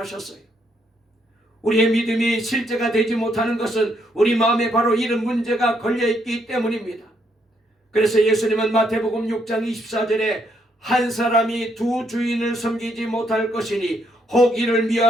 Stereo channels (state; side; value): normal; both; correlation 0.74